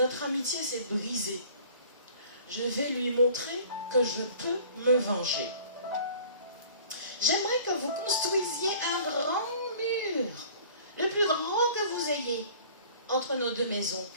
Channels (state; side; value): inverted; both; correlation -0.49